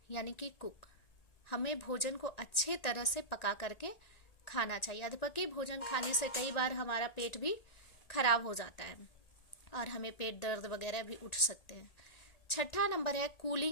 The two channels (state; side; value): late; right; 1.9 ms